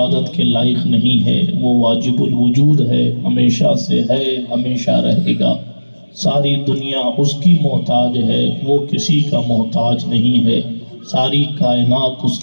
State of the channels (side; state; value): both; inverted; correlation -1.00